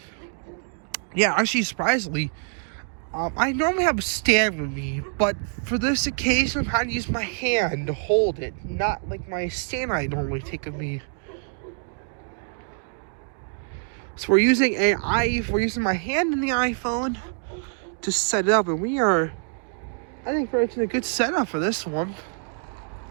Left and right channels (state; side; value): silent; left; 55 dB below the other